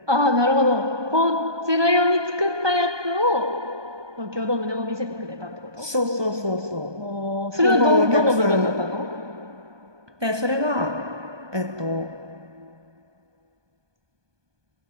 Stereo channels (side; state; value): left; late; 1.2 ms